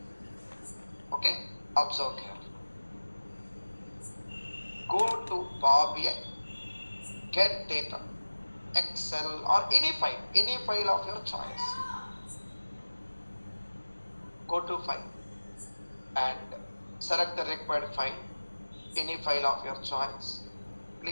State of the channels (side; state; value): both; inverted; correlation -1.00